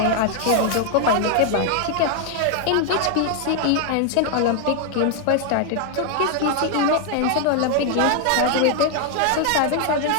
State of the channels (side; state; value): both; different; correlation 0.00